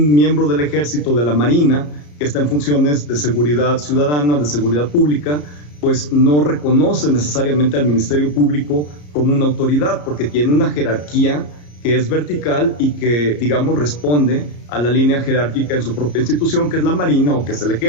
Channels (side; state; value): right; late; 34 ms